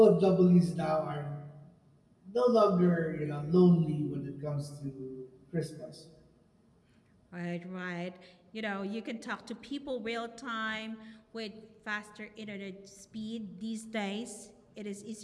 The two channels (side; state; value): both; identical; correlation 1.00